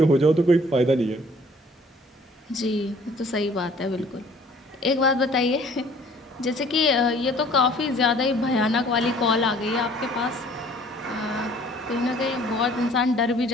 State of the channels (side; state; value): both; normal; correlation 0.55